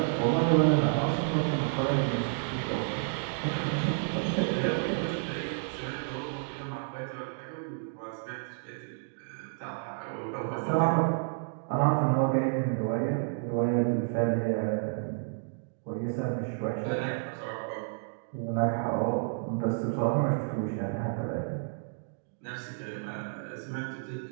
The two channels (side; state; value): left; silent; digital silence